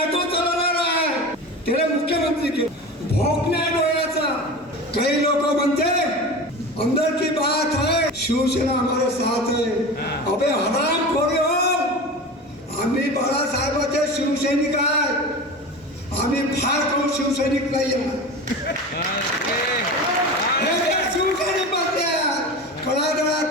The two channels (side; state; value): both; normal; correlation 0.30